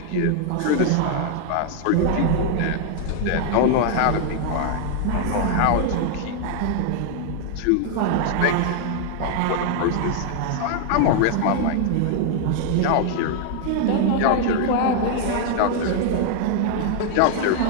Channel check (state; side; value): different; both; correlation 0.00